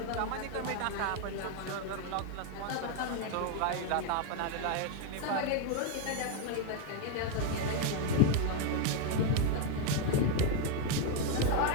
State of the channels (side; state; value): both; different; correlation 0.01